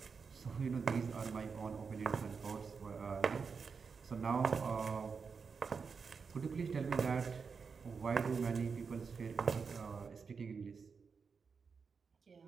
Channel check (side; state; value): left; quieter; 5.4 dB